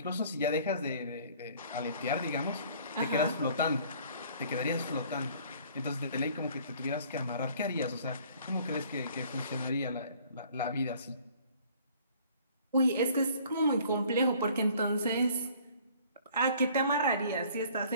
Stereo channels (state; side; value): inverted; both; correlation -0.55